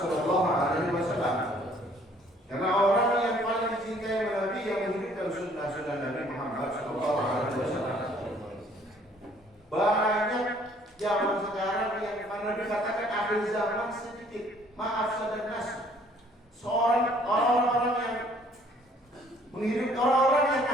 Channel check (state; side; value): normal; both; correlation 0.59